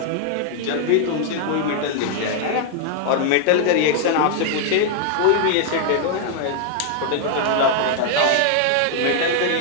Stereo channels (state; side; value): different; both; correlation 0.00